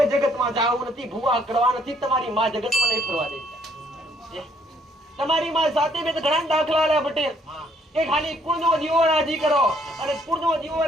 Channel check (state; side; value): normal; both; correlation 0.66